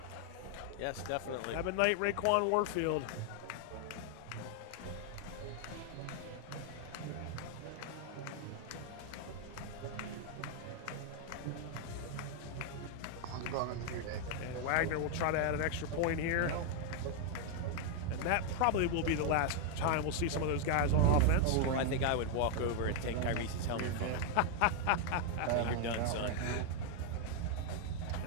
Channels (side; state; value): both; different; correlation 0.00